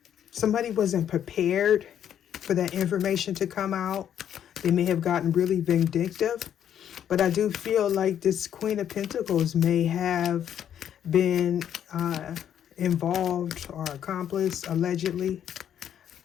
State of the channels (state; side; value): quieter; right; 9.7 dB